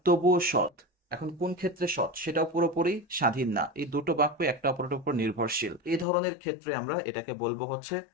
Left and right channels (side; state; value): right; drops out; at 6.1 s